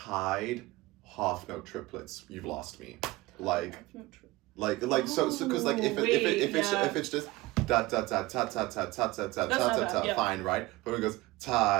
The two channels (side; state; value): left; quieter; 20.3 dB